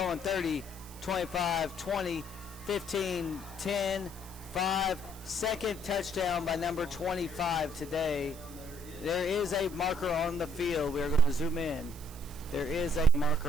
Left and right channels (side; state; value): right; noise; hiss, 18 dB below the sound